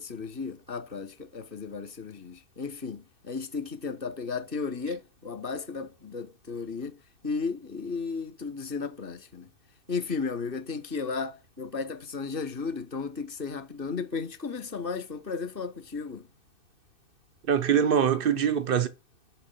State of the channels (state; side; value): late; left; 2.6 ms